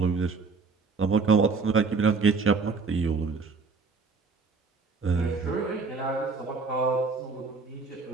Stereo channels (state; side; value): quieter; left; 4.5 dB